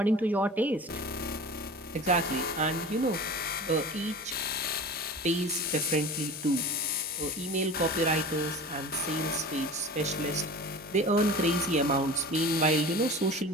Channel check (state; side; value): normal; both; correlation 0.36